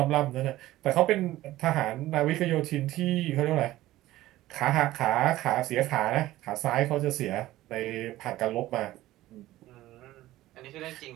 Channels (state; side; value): quieter; left; 15.9 dB